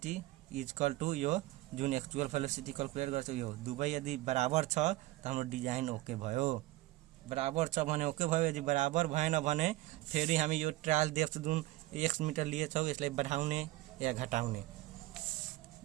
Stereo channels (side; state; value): left; quieter; 18.0 dB